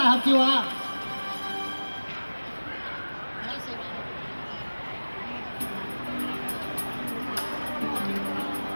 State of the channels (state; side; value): inverted; both; correlation -1.00